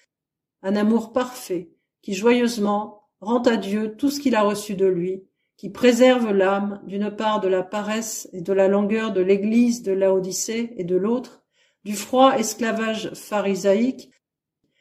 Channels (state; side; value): identical; both; correlation 1.00